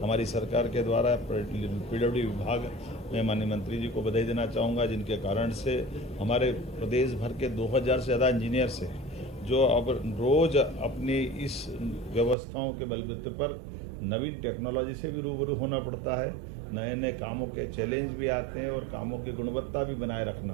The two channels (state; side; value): drops out; left; at 12.4 s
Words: हमारी सरकार के द्वारा। पीडब्ल्यूडी विभाग में माननीय मंत्री जी को बधाई देना चाहूँगा, जिनके कारण से हमारे प्रदेश भर के 2000 से ज़्यादा इंजीनियर्स हैं, जो अब रोज़ अपनी इस व्यवस्थाओं के बलबूते पर नवीन टेक्नोलॉजी से भी रूबरू होना पड़ता है। नए नए कामों के चैलेंज भी आते हैं और कामों की गुणवत्ता भी बनाए